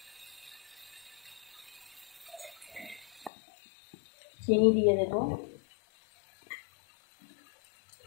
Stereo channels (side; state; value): right; drops out; at 3.3 s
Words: চিনি দিয়ে দেব।